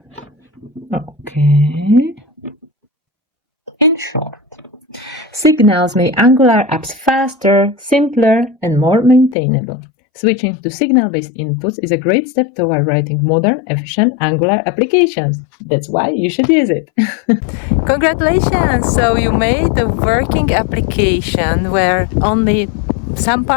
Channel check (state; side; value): drops out; right; at 9.3 s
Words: Okay. In short, signals make Angular apps faster, simpler, and more maintainable. Switching to signal-based inputs is a great step toward writing modern, efficient Angular applications. That's why you should use it. Congratulations! So you made a working application where only some